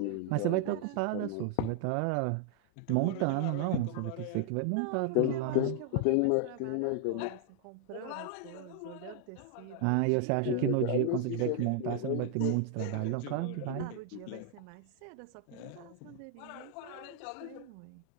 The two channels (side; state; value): both; different; correlation 0.00